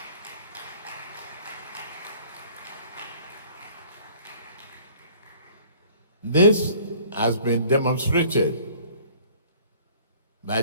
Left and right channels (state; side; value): inverted; both; correlation -0.53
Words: This has been demonstrated by